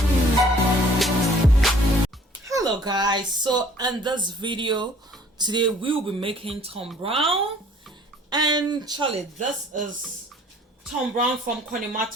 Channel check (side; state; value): both; normal; correlation 0.55